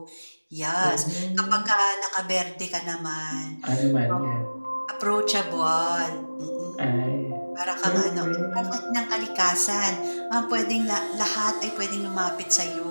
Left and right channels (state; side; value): inverted; both; correlation -1.00